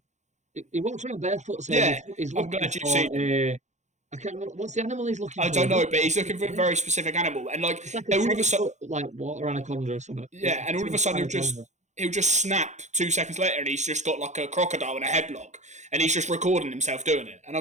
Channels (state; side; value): late; left; 0.34 ms